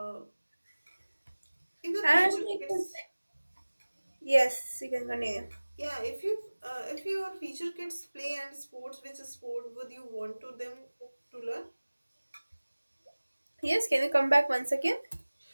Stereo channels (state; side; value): inverted; both; correlation -1.00